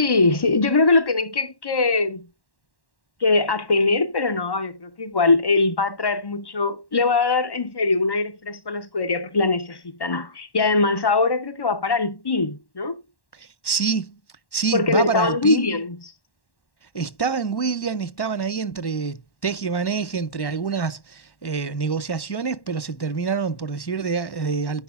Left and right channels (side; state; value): right; late; 1.1 ms